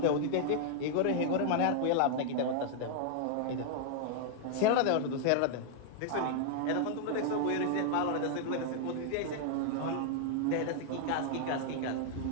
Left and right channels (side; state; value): both; different; correlation 0.00